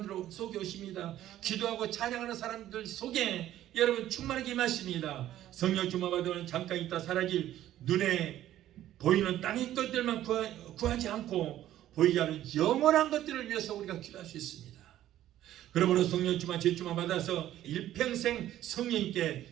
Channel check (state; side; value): quieter; left; 13.0 dB